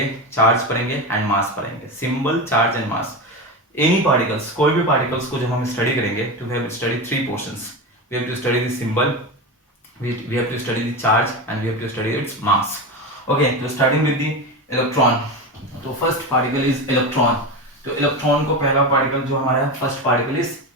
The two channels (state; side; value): normal; both; correlation 0.20